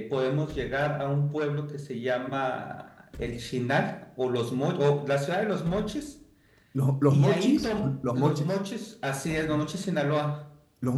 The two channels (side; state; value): both; identical; correlation 1.00